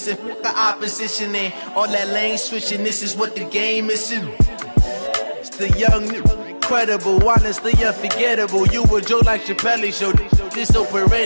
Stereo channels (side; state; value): both; inverted; correlation -1.00